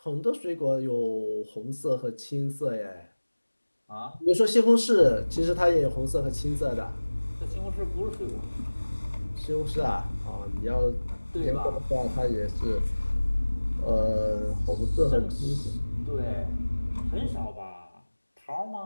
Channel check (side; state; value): both; inverted; correlation -1.00